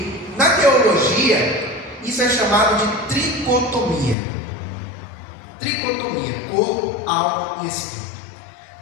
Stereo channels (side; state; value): right; drops out; at 4.2 s